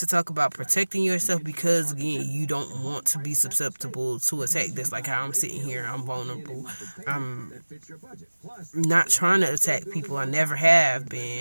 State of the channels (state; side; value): inverted; both; correlation -1.00